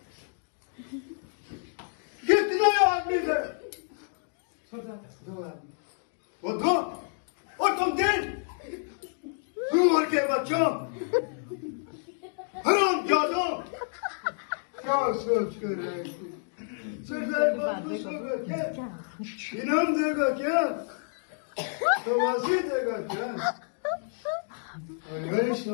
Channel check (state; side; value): silent; right; 58 dB below the other